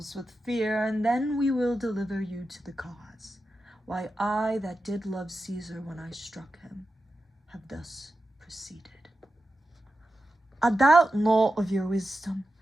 with fear, and then we will deliver you to the cause. Why, I that did love Caesar when I struck him, have thus proceeded. I doubt naught of your wisdom.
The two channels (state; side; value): normal; both; correlation 0.91